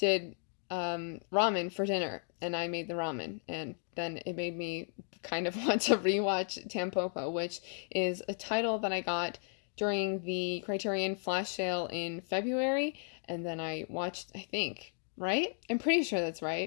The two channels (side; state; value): right; silent; 55 dB below the other